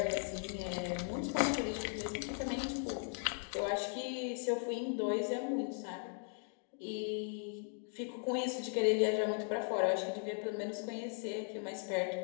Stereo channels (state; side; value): silent; right; 52 dB below the other